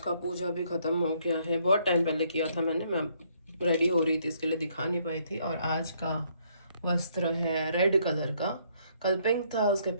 पूजा भी ख़त्म हो गया है, बहुत टाइम पहले किया था मैंने, मैं रेडी हो रही थी इसके लिए दिखा नहीं पाई थी। और आज का वस्त्र है रेड कलर का, कल पिंक था, उसके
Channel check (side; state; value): both; inverted; correlation -0.68